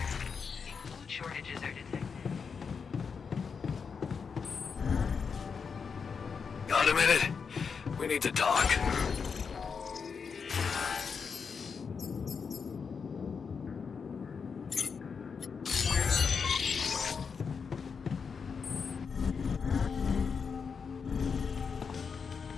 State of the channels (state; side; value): quieter; right; 5.8 dB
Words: Food shortages are detected. Got a minute? We need to talk.